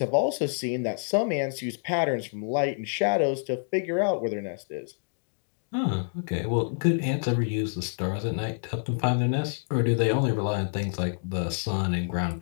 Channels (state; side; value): silent; right; digital silence